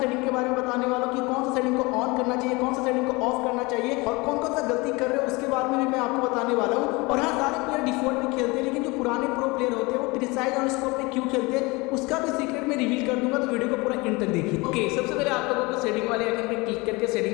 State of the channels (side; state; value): right; quieter; 24.8 dB